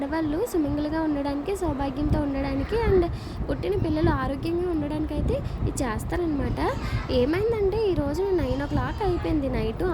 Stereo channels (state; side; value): identical; both; correlation 1.00